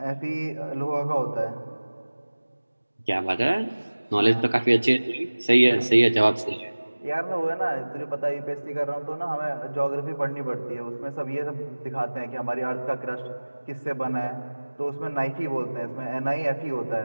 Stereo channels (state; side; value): inverted; both; correlation -1.00